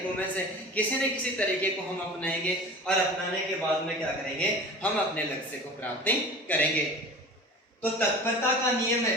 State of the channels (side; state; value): both; normal; correlation 0.38